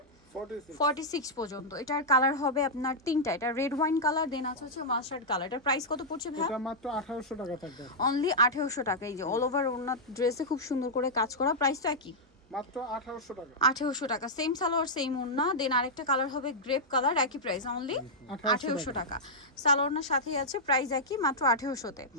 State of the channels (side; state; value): both; normal; correlation -0.08